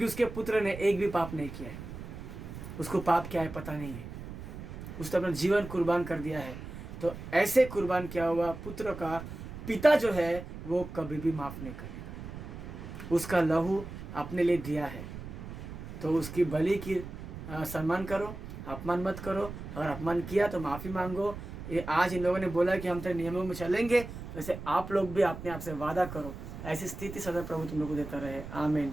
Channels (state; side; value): noise; right; rumble, 10 dB below the sound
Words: उसके पुत्र ने एक भी पाप नहीं किया है। उसको पाप क्या है पता नहीं है, उसने अपना जीवन कुर्बान कर दिया है। तो ऐसे कुर्बान किया हुआ पुत्र का पिता जो है वो कभी भी माफ नहीं करेगा। उसका लहू अपने लिए दिया है तो उसकी बलि की सम्मान करो, अपमान मत करो। अगर अपमान किया तो माफ़ी मांगो। ये आज इन लोगों ने बोला कि हम तेरे नियमों में चलेंगे, वैसे आप लोग भी अपने आप से वादा करो। ऐसी स्थिति सदा प्रभु तुम लोग को देता रहे, आमीन।